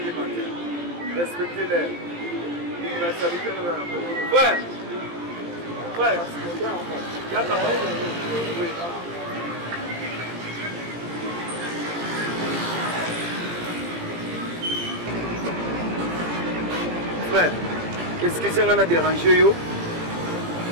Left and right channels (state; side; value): late; left; 17 ms